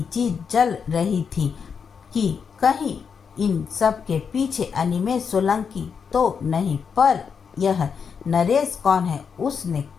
चीज़ चल रही थी कि कहीं इन सब के पीछे अनिमेष सोलंकी तो नहीं, पर यह नरेश कौन है? उसने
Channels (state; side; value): quieter; right; 6.4 dB